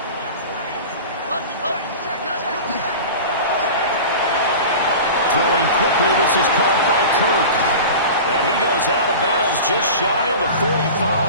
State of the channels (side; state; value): both; inverted; correlation -0.34